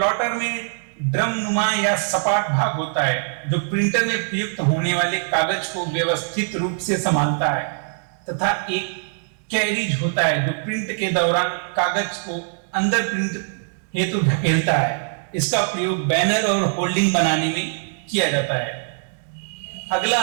में ड्रम नुमा या सपाट भाग होता है जो प्रिंटर में प्रयुक्त होने वाले कागज को व्यवस्थित रूप से संभालता है तथा एक कैरिज होता है जो प्रिंट के दौरान कागज को अंदर प्रिंट हेतु ढकेलता है। इसका प्रयोग बैनर और होल्डिंग बनाने में किया जाता है। अगला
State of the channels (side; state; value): left; silent; digital silence